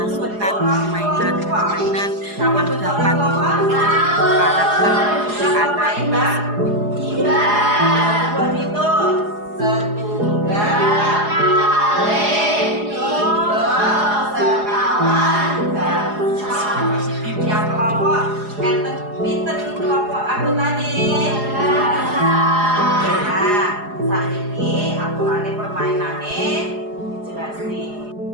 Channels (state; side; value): late; left; 4.8 ms